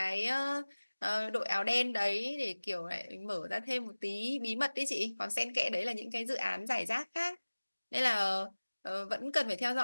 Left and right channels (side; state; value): both; inverted; correlation -1.00